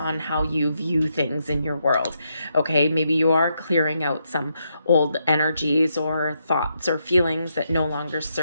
how you view things in your world. Okay, maybe you are clearing out some old energies or thoughts or feelings that no longer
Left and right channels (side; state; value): both; inverted; correlation -0.80